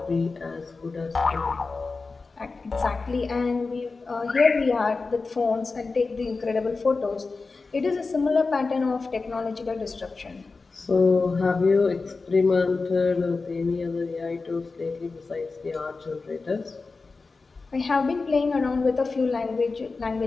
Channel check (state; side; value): quieter; right; 4.0 dB